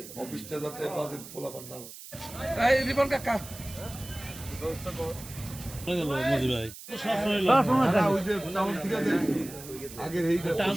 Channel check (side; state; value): right; noise; hiss, 14 dB below the sound